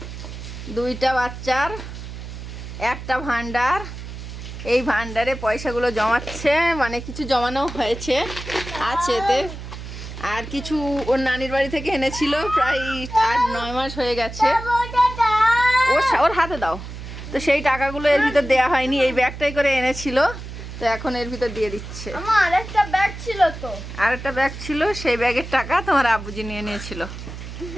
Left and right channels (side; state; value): right; noise; hum, 10 dB below the sound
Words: দুইটা বাচ্চার একটা ভান্ডার, এই ভান্ডারে পয়সাগুলো জমাচ্ছে, মানে কিছু জমানো হয়েছে আছে এতে, আর কিছু ওর নানির বাড়ি থেকে এনেছিল, প্রায় 8-9 মাস হয়ে গেছে। ওর হাতে দাও। তো সেই টাকাগুলো এর ভিতর দেওয়া হয়নি, এই ব্যাগটাই করে এনেছিল, তো এখন এর ভিতর দিয়ে দিচ্ছে। আমার আরেকটা ব্যাগ ছিল, তো আরেকটা ব্যাগ ছিল, সেই ব্যাগের টাকা তোমার আব্বুজি নিয়ে নিয়েছিল।